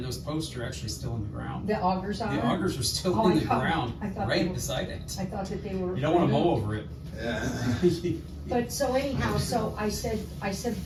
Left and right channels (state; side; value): identical; both; correlation 1.00